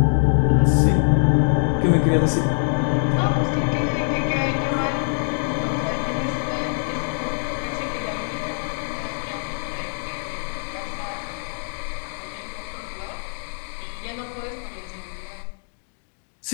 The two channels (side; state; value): right; silent; digital silence